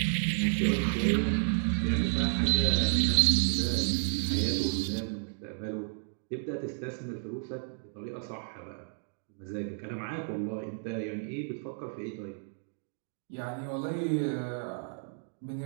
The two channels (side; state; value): left; silent; digital silence